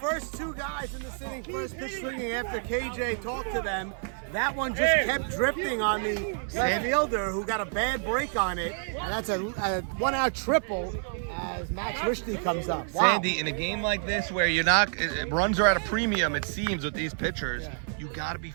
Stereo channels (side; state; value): left; silent; 59 dB below the other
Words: 2 guys in the sitting, first pitch swinging after KJ talked to them. That one just kept drifting on the left fielder who got a bad break on it. And that's a 1-out triple as Max Rishney comes up. Wow. Sandy, in a game like this where you're not, runs are at a premium, it seems, with these pitchers, You got to be